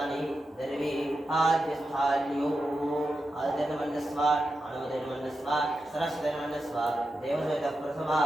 दर्वी आद्यस्थान्यो आदित्यनमन्यस्व अनुमतिर्मन्यस्व सरस्वतीर्मन्यस्व देवसहितः प्रथमा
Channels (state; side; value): normal; both; correlation 0.89